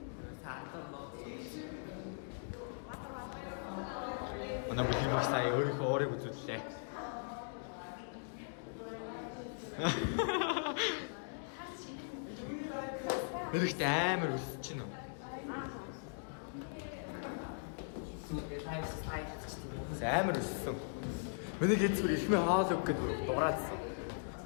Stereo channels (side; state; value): right; silent; digital silence